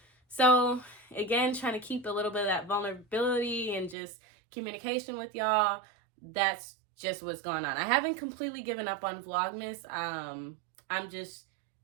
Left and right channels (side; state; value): left; drops out; at 4.0 s